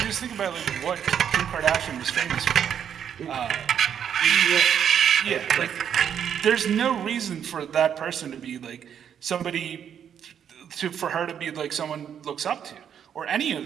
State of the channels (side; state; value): left; quieter; 8.6 dB